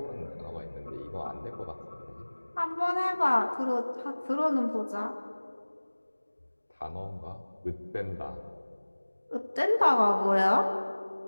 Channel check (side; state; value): both; inverted; correlation -1.00